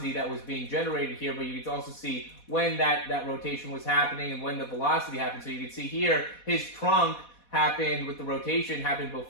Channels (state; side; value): late; right; 4.1 ms